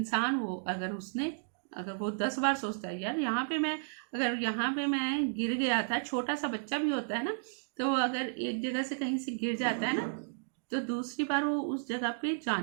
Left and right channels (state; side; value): silent; left; digital silence